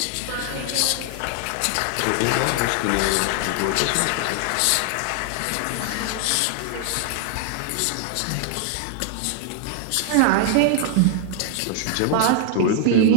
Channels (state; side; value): different; both; correlation 0.00